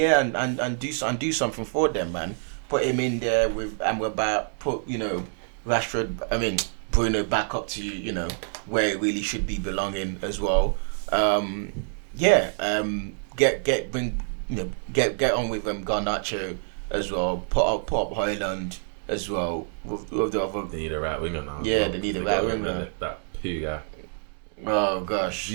and do something for them, man. Put him in there with put Rashford. I mean Bruno back up to where it really should be belonging as well. Get on with Garnacho as well. Put up Højlund as well. With the other. They need a right winger now. Yeah, they need a right winger. That poo guy. Oh gosh,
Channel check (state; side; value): silent; left; 61 dB below the other